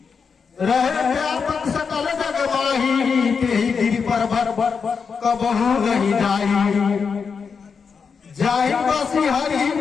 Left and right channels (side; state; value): right; quieter; 5.7 dB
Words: रहे व्यापक सकल जग माही, तेहि गिरि पर्वत कबहू नहीं जाई। जाहि बसी हरि